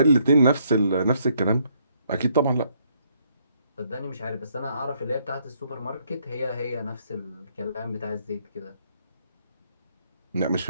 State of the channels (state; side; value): inverted; both; correlation -0.70